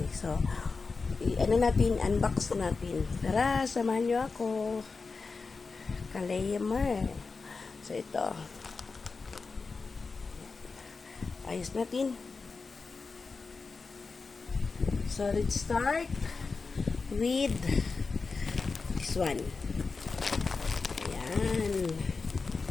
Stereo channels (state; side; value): quieter; right; 4.4 dB